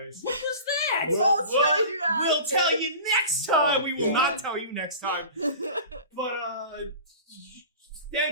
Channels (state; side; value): inverted; both; correlation -0.38